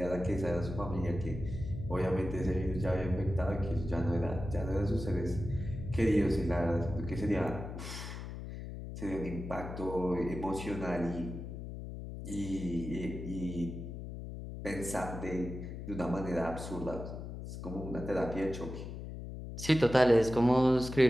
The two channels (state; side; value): noise; left; hum, 8 dB below the sound